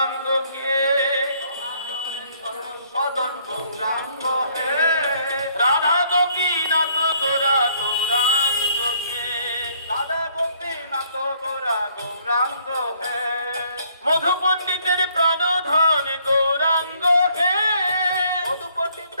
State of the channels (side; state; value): both; inverted; correlation -0.65